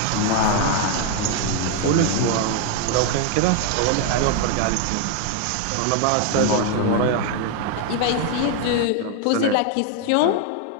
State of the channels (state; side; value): different; both; correlation 0.01